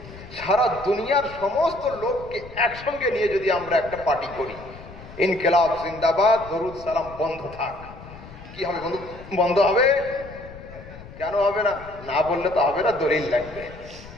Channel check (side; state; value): left; noise; rumble, 17 dB below the sound